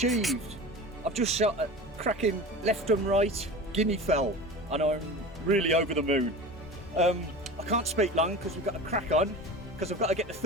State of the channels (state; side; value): normal; both; correlation 0.33